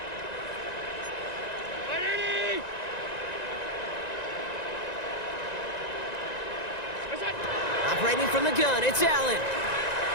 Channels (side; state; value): right; late; 1.9 ms